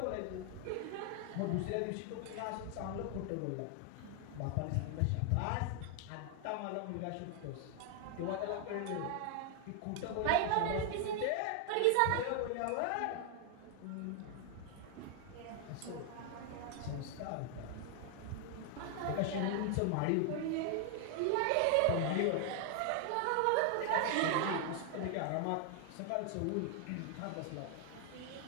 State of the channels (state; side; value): different; both; correlation 0.00